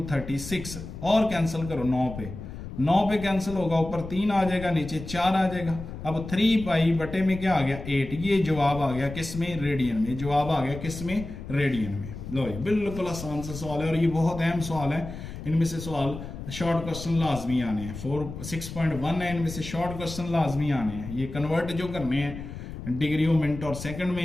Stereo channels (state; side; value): noise; left; rumble, 10 dB below the sound